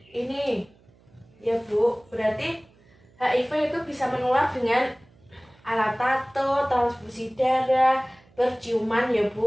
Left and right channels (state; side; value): noise; right; hum, 30 dB below the sound